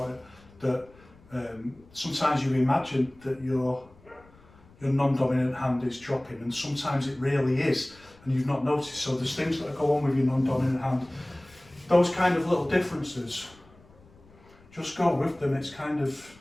it, that sometimes you imagine that your non-dominant hand is dropping, and sometimes it really is, and you've not noticed. So there's things that go on with your non-dominant hand. Those kind of little differences, just go with them. It's kind of,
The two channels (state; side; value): noise; left; rumble, 26 dB below the sound